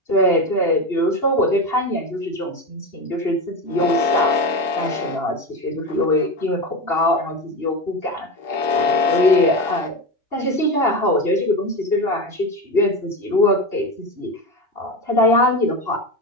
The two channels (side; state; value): right; late; 2.8 ms